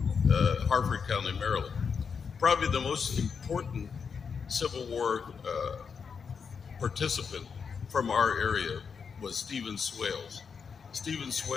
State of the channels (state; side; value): quieter; right; 6.1 dB